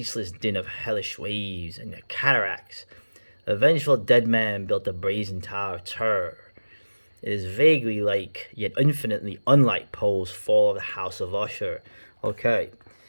din of hellish waves and the cataracts, a vengeful dead man built a brazen tower of terror. It is vaguely like, yet infinitely unlike Poe's Fall of the House of Usher. Okay,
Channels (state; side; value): inverted; both; correlation -1.00